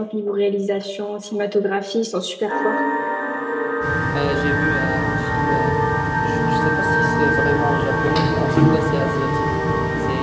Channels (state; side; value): identical; both; correlation 1.00